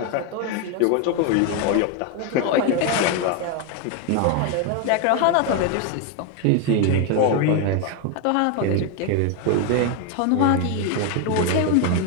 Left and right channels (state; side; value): different; both; correlation 0.01